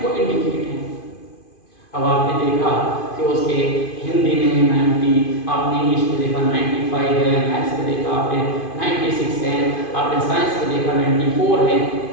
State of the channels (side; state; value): right; late; 2.5 ms